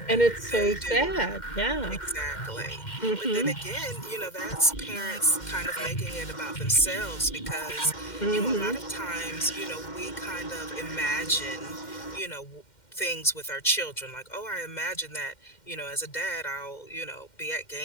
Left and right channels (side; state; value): right; late; 2.1 ms